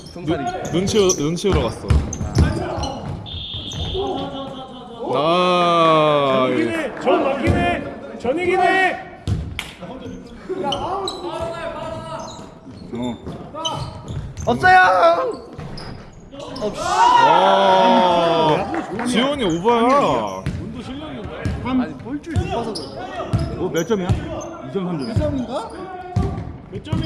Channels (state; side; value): identical; both; correlation 1.00